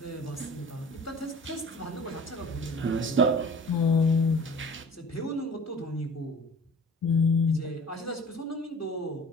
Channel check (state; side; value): normal; both; correlation 0.46